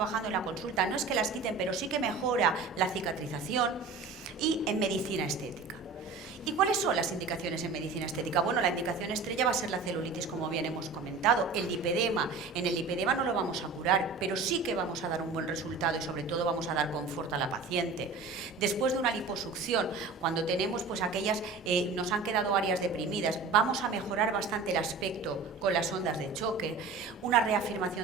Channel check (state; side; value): quieter; left; 4.3 dB